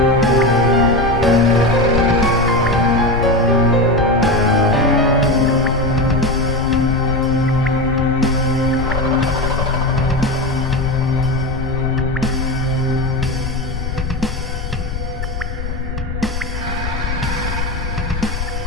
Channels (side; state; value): left; noise; rumble, 5 dB below the sound